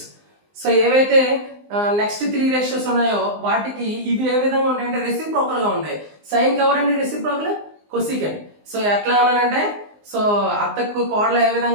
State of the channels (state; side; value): late; left; 19 ms